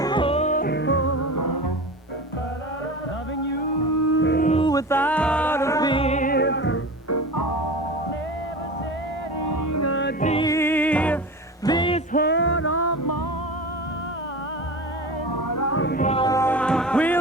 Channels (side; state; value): both; normal; correlation 0.30